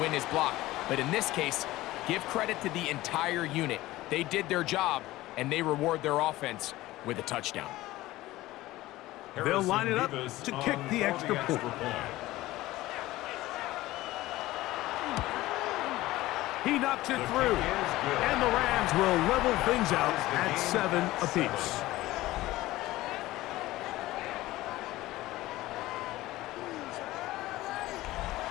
his block. But in this case, give credit to the entire unit. They did their job, and they reward their offense with a touchdown. They'll line it up to kick the extra point. He knocks it through, and the Rams will level things out at 7 apiece.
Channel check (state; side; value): quieter; right; 17.3 dB